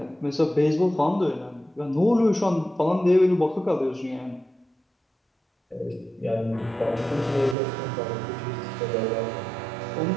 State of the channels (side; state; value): left; drops out; at 7.6 s